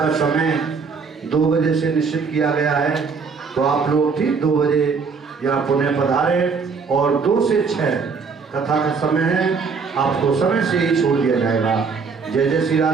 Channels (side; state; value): left; quieter; 5.2 dB